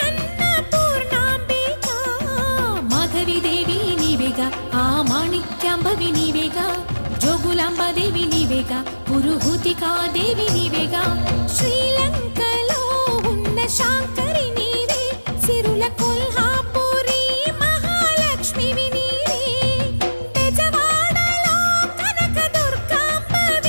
అన్నపూర్ణాంబిక మాధవి దేవి నీవేగా ఆ మాణిక్యాంబవి నీవేగా జోగులాంబదేవి నీవేగా పురుహూతికా దేవి నీవేగా శ్రీలంకలో ఉన్న శాంకరి నీవే సిరుల కొల్హాపురి మహాలక్ష్మివి నీవే బెజవాడలో కనక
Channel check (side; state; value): both; inverted; correlation -1.00